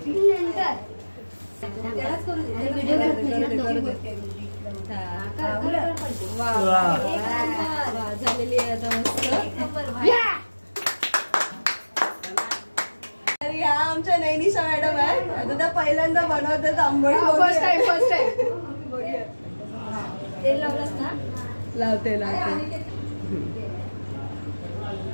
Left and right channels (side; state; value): both; inverted; correlation -1.00